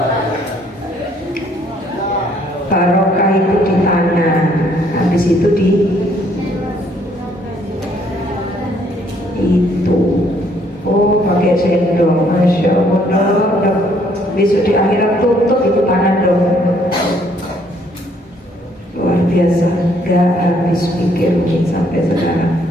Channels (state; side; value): normal; both; correlation 0.66